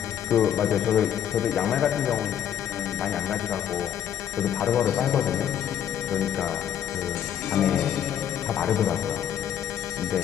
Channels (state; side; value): quieter; right; 9.7 dB